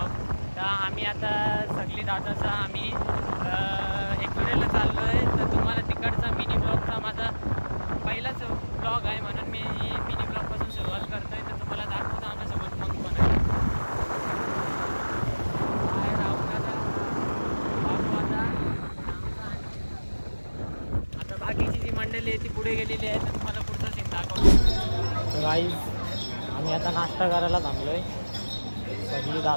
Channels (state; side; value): inverted; both; correlation -1.00